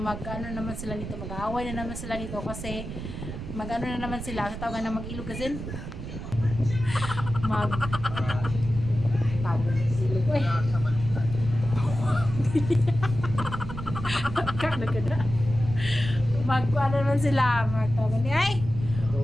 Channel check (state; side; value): noise; right; rumble, 8 dB below the sound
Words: sila nito, mag-aaway na naman sila nito kasi na naman sila sa tawagan na mag-ilog kasi ilog eh naman sila magtawagan